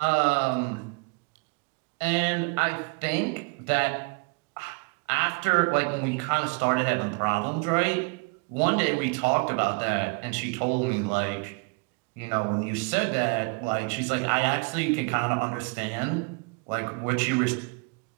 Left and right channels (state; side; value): quieter; left; 33.6 dB